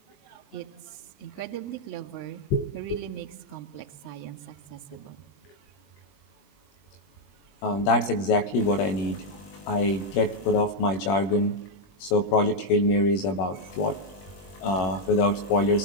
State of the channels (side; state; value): right; late; 21 ms